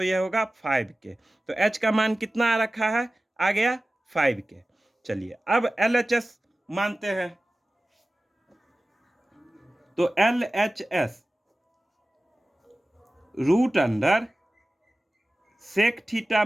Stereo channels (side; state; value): both; normal; correlation 0.96